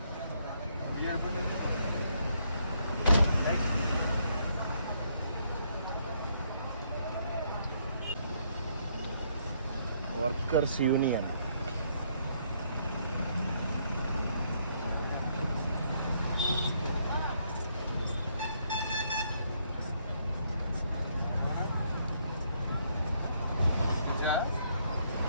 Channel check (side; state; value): both; inverted; correlation -0.72